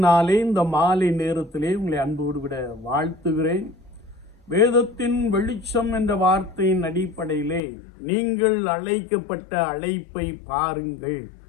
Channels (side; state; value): right; drops out; at 7.6 s